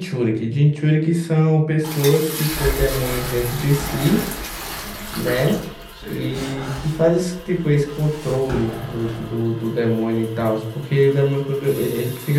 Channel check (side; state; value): both; identical; correlation 1.00